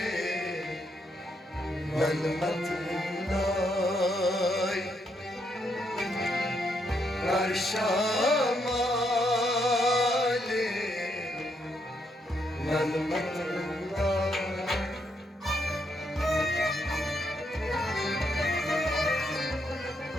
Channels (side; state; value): both; normal; correlation 0.77